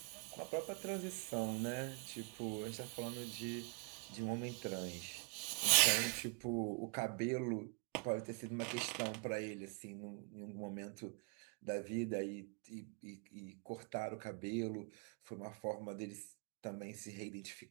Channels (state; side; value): quieter; left; 32.6 dB